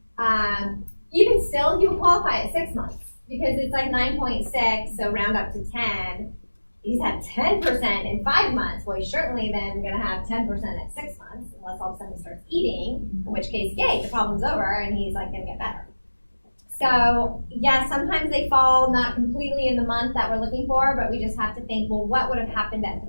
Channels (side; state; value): both; inverted; correlation -1.00